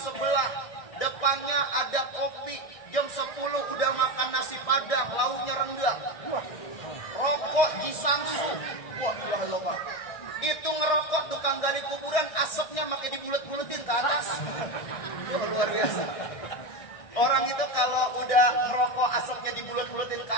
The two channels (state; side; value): late; right; 1.6 ms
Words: Depannya ada kopi. Jam 10 udah makan nasi padang, lauknya rendang. Rokok Jisansu. Wah, Pak. Itu ngerokok tukang gali kuburan, asapnya makin dibulet-buletin ke atas. Wah, luar biasa. Orang itu kalau udah ngerokok asapnya dibulet-buletin ke